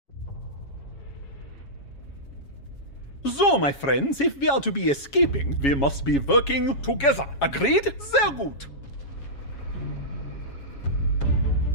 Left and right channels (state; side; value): late; right; 7.2 ms